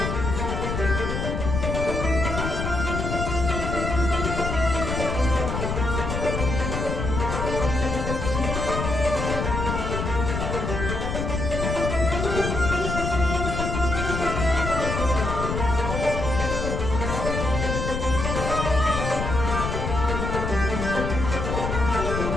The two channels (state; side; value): noise; left; rumble, 2 dB below the sound